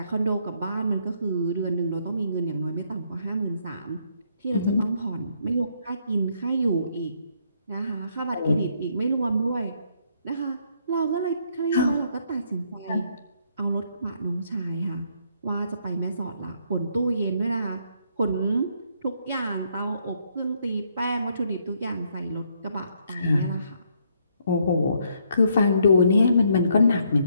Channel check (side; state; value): both; inverted; correlation -0.71